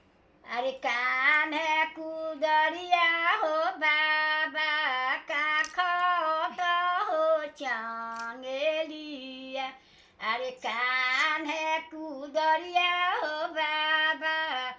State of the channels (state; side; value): identical; both; correlation 1.00